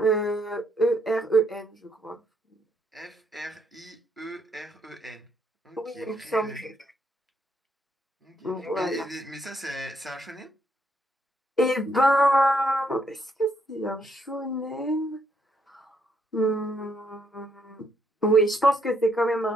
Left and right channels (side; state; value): both; normal; correlation 0.74